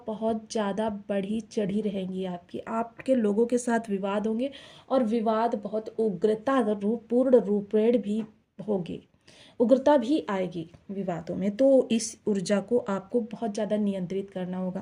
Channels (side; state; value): both; identical; correlation 1.00